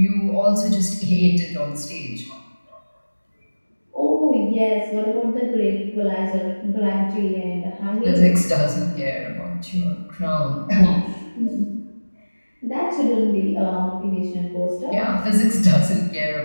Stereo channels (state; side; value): inverted; both; correlation -1.00